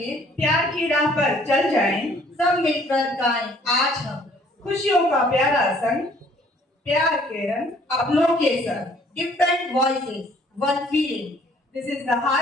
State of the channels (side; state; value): both; normal; correlation 0.59